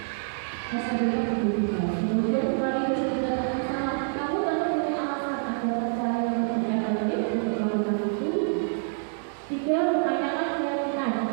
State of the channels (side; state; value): left; silent; digital silence